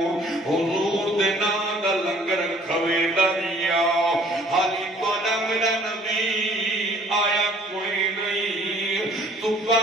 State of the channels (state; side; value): normal; both; correlation 0.56